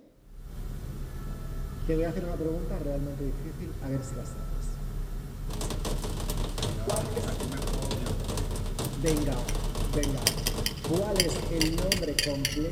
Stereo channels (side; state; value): both; identical; correlation 1.00